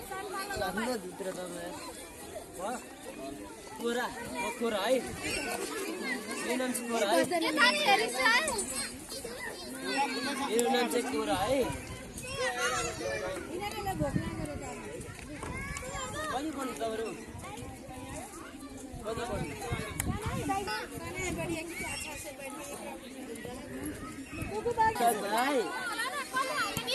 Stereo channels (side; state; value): both; identical; correlation 1.00